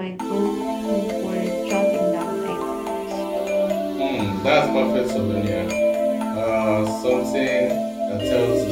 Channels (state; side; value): identical; both; correlation 1.00